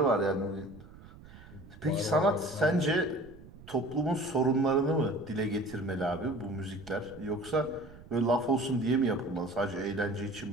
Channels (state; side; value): noise; right; rumble, 19 dB below the sound